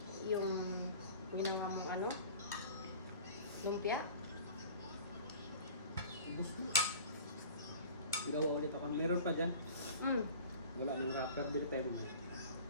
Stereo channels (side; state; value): both; inverted; correlation -0.42